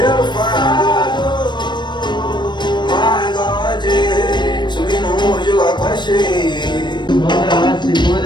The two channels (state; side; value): late; right; 0.22 ms